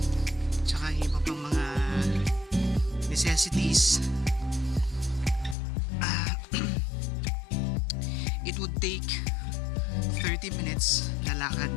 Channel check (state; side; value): drops out; right; at 5.6 s